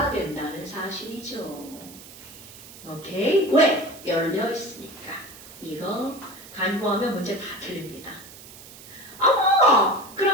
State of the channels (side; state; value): right; noise; hiss, 18 dB below the sound